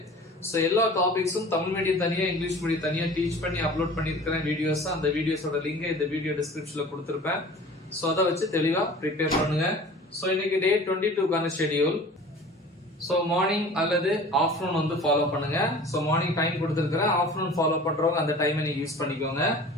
சோ எல்லா டாபிக்ஸும் தமிழ் மீடியம் தனியா இங்கிலீஷ் மீடியம் தனியா டீச் பண்ணி அப்லோட் பண்ணிருக்கிறேன் வீடியோஸ். அந்த வீடியோஸோட லிங்க் இந்த வீடியோ டிஸ்கிரிப்ஷன்ல கொடுத்திருப்பேன். சோ அத வச்சு தெளிவா ப்ரிப்பேர் பண்ணுங்க. சோ இன்னைக்கு டே 22 கான ஷெட்யூல். சோ மார்னிங் அல்லது ஆஃப்டர்நூன் வந்து ஃபாலோ பண்ணுங்க. சோ மார்னிங் டைம் கொடுத்திருக்கிறேன். ஆஃப்டர்நூன் ஃபாலோ பண்றவங்க அந்த டைமை நீங்க யூஸ் பண்ணிக்கோங்க.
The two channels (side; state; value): both; normal; correlation 0.42